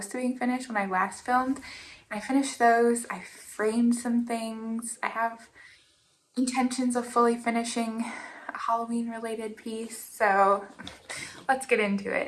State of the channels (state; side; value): identical; both; correlation 1.00